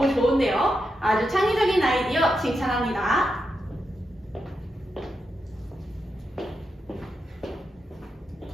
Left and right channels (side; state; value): both; normal; correlation 0.86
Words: 좋은데요. 아주 창의적인 아이디어 칭찬합니다.